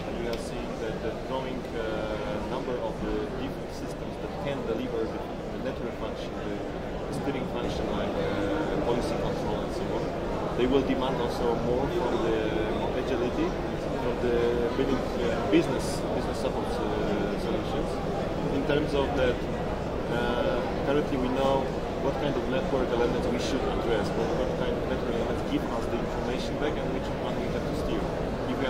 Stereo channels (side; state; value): both; identical; correlation 1.00